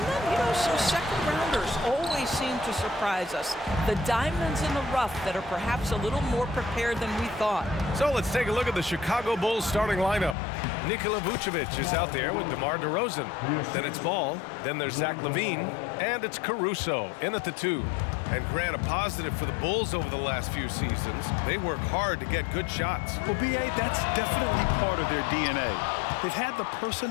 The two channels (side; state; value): right; drops out; at 10.4 s